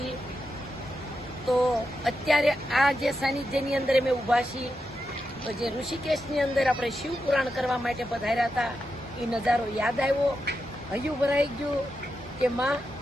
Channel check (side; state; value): both; normal; correlation 0.87